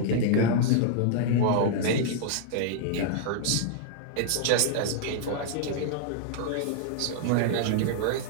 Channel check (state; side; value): different; both; correlation -0.01